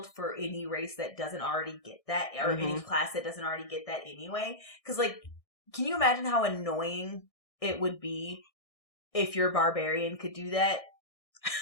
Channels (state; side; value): late; right; 1.6 ms